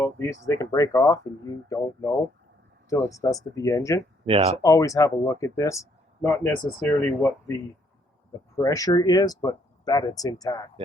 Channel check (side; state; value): both; normal; correlation 0.68